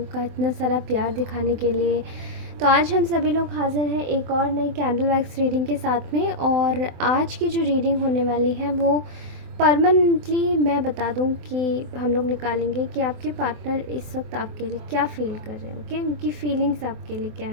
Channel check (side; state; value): left; late; 24 ms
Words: का इतना सारा प्यार दिखाने के लिए। तो आज हम सभी लोग हाज़िर हैं एक और नई कैंडल वैक्स रीडिंग के साथ में। और आज की जो रीडिंग होने वाली है वो परमानेंटली मैं बता दूं कि हम लोग निकालेंगे कि आपके पार्टनर इस वक्त आपके लिए क्या फ़ील कर रहे हैं। ओके, उनकी फीलिंग्स आपके लिए क्या